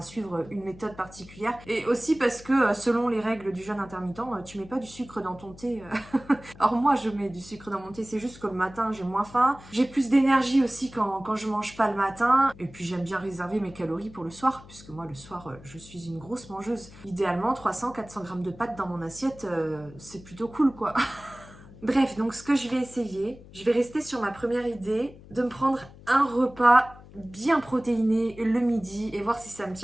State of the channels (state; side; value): noise; left; hum, 20 dB below the sound